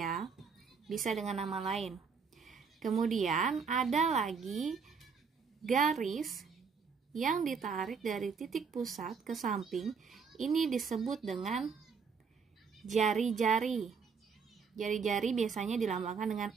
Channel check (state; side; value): quieter; left; 5.7 dB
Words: bisa dengan nama lain. Kemudian ada lagi garis yang ditarik dari titik pusat ke samping, ini disebut dengan jari-jari. Jari-jari biasanya dilambangkan dengan